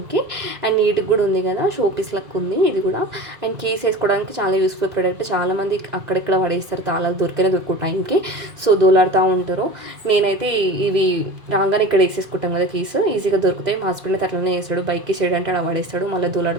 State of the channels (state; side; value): late; left; 2.0 ms